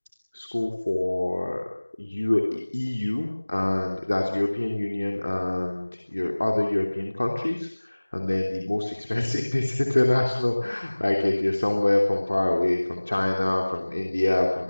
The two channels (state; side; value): inverted; both; correlation -1.00